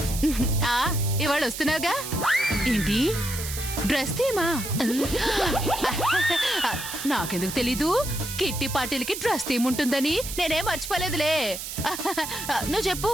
ఇవాళ వస్తున్నావుగా? ఏంటి, డ్రెస్ తీమా? నాకెందుకు తెలీదు, కిట్టి పార్టీలకి డ్రెస్ థీమ్ ఉంటుందని. నేనేం మర్చిపోలేదులే. నువ్వు చెప్పు,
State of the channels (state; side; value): noise; right; hiss, 7 dB below the sound